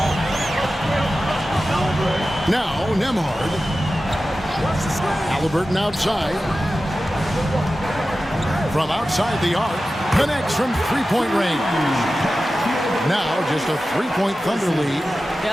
Now Nembhard. Halliburton outside. From outside the arc. Connects from three-point range. Now just a 3-point Thunder lead.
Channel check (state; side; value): normal; both; correlation 0.94